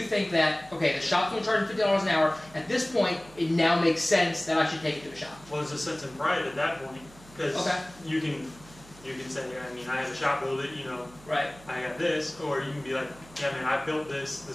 think that, okay, the shop's going to charge $50 an hour, at this point it now makes sense that I should take it to a shop? Well, there's a sense of pride at that point because Okay. you can say, I mean, I have a shop build it, you know, Right. I got this, or you can be like, yeah, man, I built this.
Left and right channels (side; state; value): right; noise; hum, 22 dB below the sound